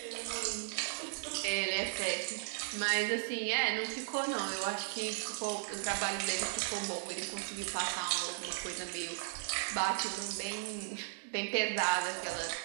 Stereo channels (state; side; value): silent; left; 54 dB below the other